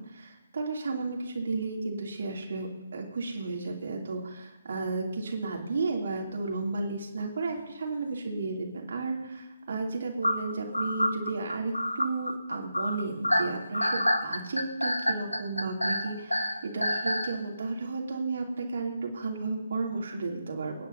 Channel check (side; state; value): both; inverted; correlation -0.84